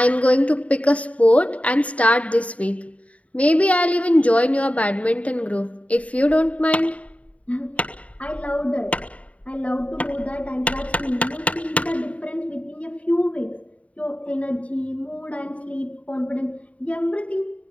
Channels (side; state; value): right; late; 0.067 ms